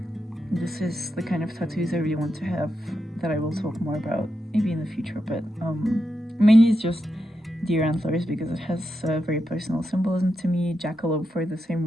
This is the kind of tattoos I really want to have that I will talk more about maybe in the future, but mainly it's just deer antlers because it has very personal symbolism to me, jackalope for the same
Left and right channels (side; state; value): both; normal; correlation 0.86